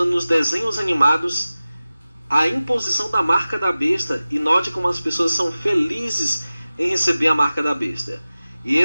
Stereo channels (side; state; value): both; inverted; correlation -0.96